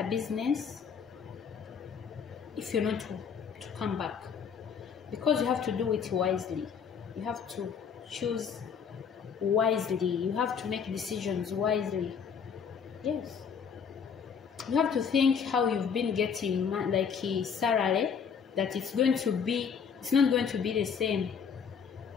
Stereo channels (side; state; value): right; quieter; 6.7 dB